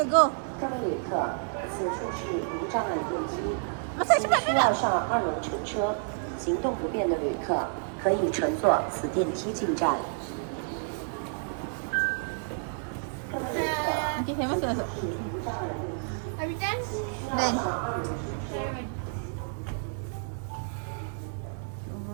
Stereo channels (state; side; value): silent; left; digital silence